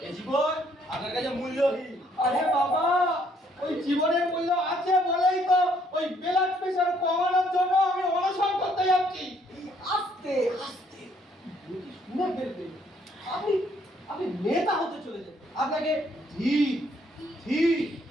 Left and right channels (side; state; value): both; normal; correlation 0.66